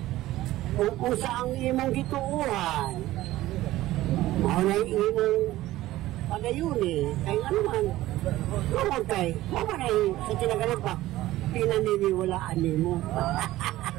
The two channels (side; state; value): left; quieter; 16.0 dB